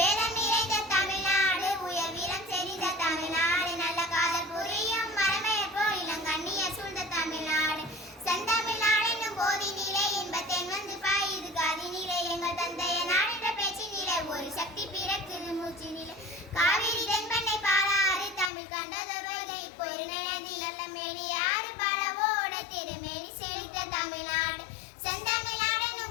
நிறைந்த தமிழ்நாடு, உயர் வீரம் செறிந்த தமிழ்நாடு, நல்ல காதல் புரியும் மரமையர் போல் இளங்கண்ணிய சூழ்ந்த தமிழ்நாடு. செந்தமிழ் நாடெனும் போதினிலே இன்பத்தேன் வந்து பாயுது காதினிலே. எங்கள் தந்தைய நாடென்ற பேச்சினிலே ஒரு சக்தி பிறக்குது மூச்சினிலே. காவிரி தென்பெண்ணை பாலாறு தமிழ் கண்டதொருகை பொருணை நதி நல்ல மேனி ஆறு பலவோட திருமேனி செழித்த தமிழ்நாடு. செந்தமிழ்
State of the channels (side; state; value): right; drops out; at 18.5 s